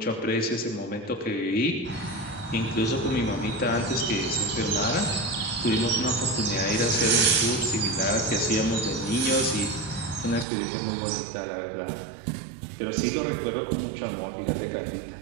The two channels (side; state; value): left; drops out; at 10.5 s